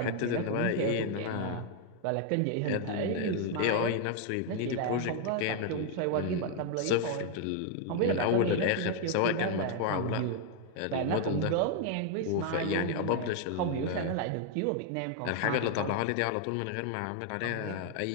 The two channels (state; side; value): different; both; correlation 0.00